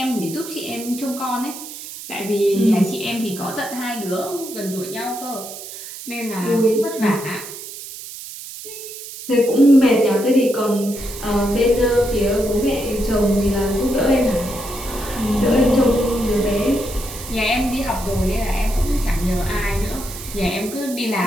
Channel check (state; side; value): noise; right; hiss, 12 dB below the sound